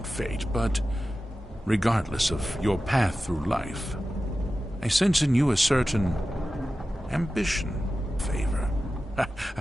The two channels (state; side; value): normal; both; correlation 0.94